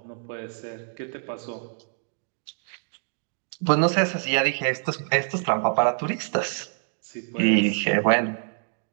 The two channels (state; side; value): silent; left; digital silence